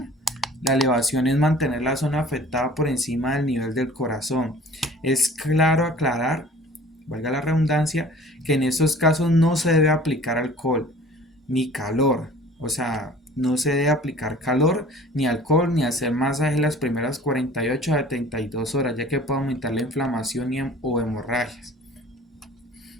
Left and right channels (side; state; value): both; normal; correlation 0.48